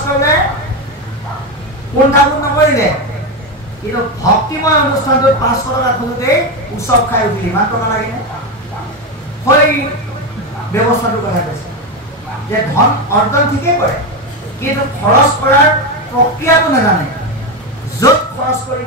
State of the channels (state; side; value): normal; both; correlation 0.12